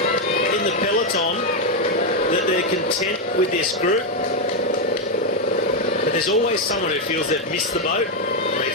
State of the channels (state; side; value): normal; both; correlation 0.04